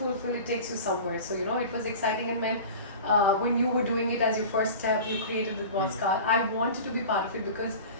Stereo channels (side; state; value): both; inverted; correlation -0.36